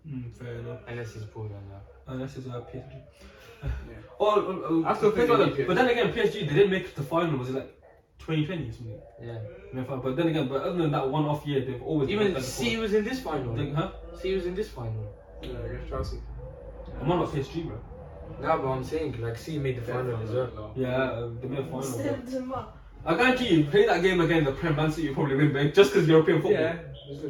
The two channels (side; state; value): both; identical; correlation 1.00